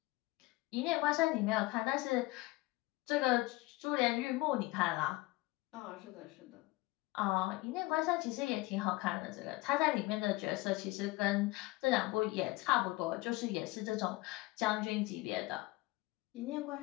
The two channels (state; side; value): quieter; right; 20.7 dB